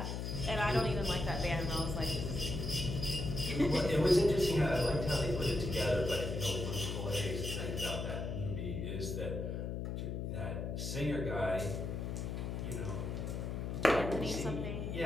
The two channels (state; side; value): noise; left; hum, 3 dB below the sound